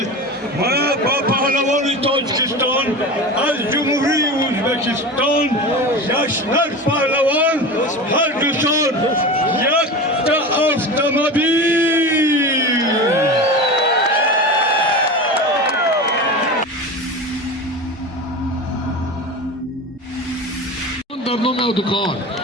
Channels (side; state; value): both; normal; correlation 0.28